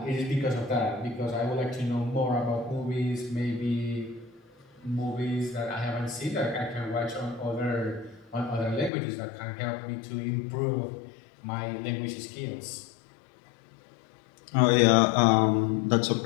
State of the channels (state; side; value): drops out; right; at 8.9 s